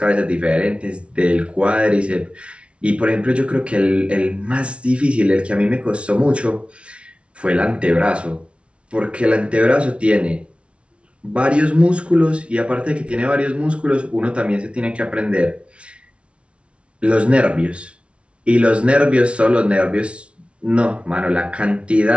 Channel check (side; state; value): left; late; 0.060 ms